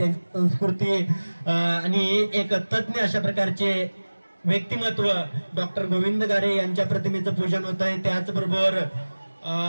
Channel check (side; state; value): both; inverted; correlation -1.00